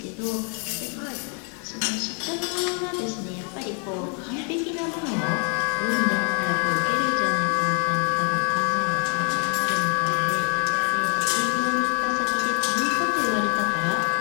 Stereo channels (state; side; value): quieter; right; 39.9 dB